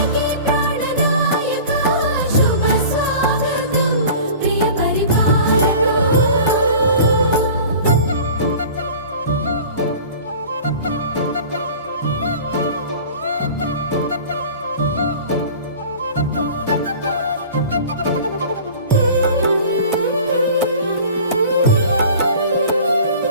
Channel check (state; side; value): inverted; both; correlation -0.41